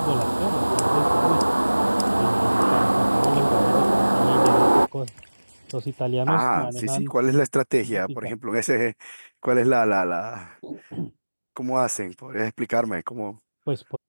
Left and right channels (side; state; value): both; inverted; correlation -1.00